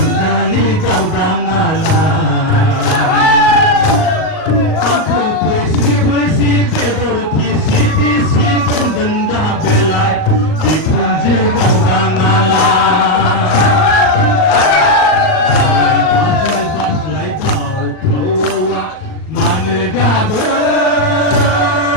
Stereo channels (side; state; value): right; late; 38 ms